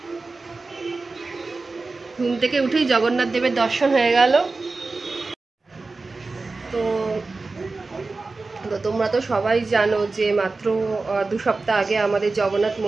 ঘুম থেকে উঠেই জগন্নাথ দেবের দর্শন হয়ে গেল। তো তোমরা তো সবাই জানো যে মাত্র 2 সপ্তাহ আগে আমাদের জগন্নাথ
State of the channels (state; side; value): quieter; left; 3.7 dB